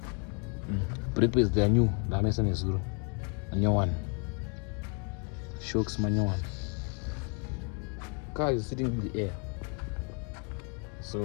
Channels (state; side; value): quieter; right; 36.5 dB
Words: Brake pads they are new, ndanoisa nezuro manyowani, shocks manyowani. Car is sitting in the air, so